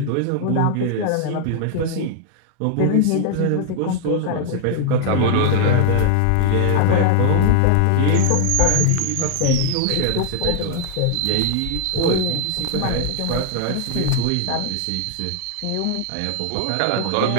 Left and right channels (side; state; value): both; different; correlation 0.00